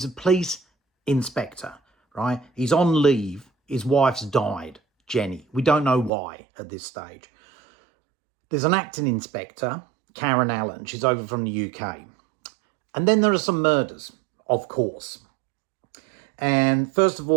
a police inspector, right? He's on leave. His wife's died, Jenny. We don't know why at this stage. There's an acting inspector, Karen Allen. She's over from the UK. And then there are some murders, of course. And first of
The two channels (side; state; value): left; drops out; at 6.1 s